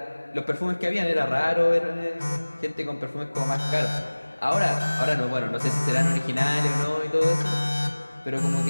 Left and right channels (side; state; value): both; inverted; correlation -1.00